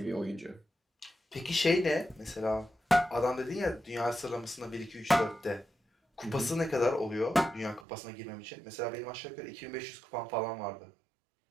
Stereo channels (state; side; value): drops out; left; at 7.9 s